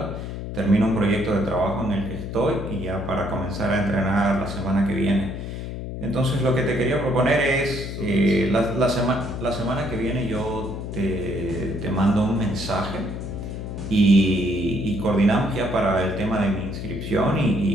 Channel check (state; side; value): noise; left; hum, 7 dB below the sound